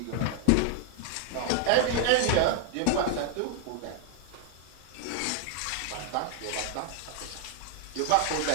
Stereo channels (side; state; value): both; different; correlation 0.00